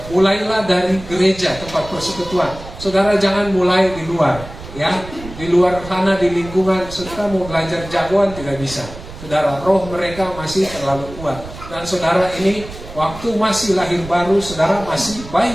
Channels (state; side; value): noise; right; rumble, 14 dB below the sound